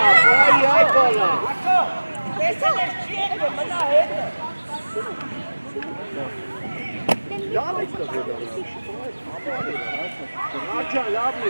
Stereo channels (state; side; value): inverted; both; correlation -1.00